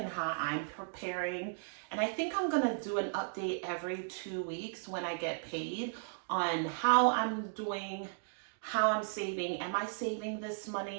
how I'm preparing. And I think I'm gonna do an update every 2 weeks when I get paid on how I'm doing, how I'm saving. Am I saving this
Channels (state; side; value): silent; left; digital silence